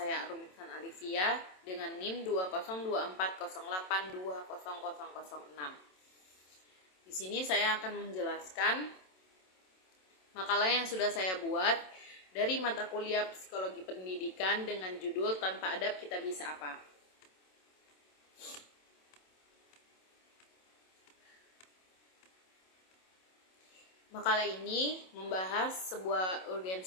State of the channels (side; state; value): right; late; 27 ms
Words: Arumisan Alivia dengan NIM 202408200006. Di sini saya akan menjelaskan makalah yang sudah saya buat dari mata kuliah Psikologi Pendidikan dengan judul Tanpa Adab Kita Bisa Apa. Makalah ini membahas sebuah